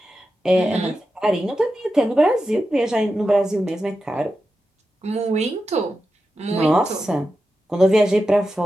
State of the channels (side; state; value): both; normal; correlation 0.90